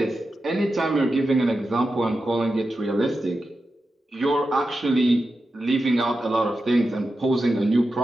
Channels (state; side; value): normal; both; correlation 0.91